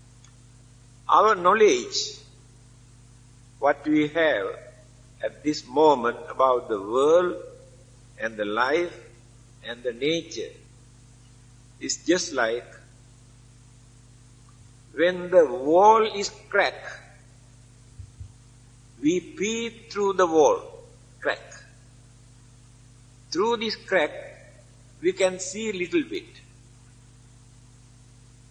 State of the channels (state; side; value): identical; both; correlation 1.00